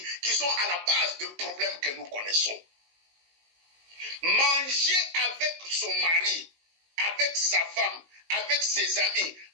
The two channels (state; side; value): late; left; 19 ms